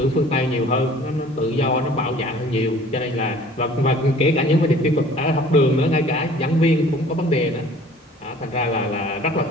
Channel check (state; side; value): normal; both; correlation 0.50